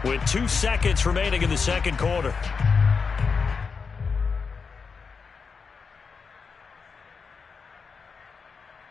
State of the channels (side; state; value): right; quieter; 5.3 dB